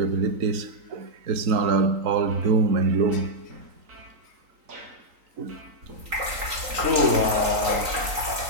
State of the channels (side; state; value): left; late; 3.9 ms